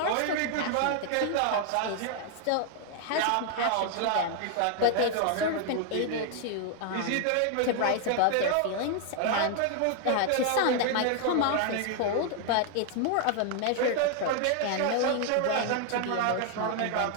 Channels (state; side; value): different; both; correlation 0.00